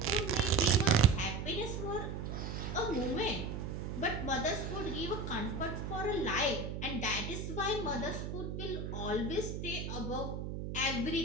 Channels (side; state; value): right; noise; hum, 5 dB below the sound